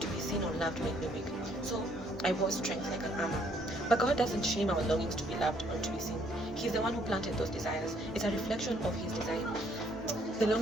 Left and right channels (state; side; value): normal; both; correlation 0.66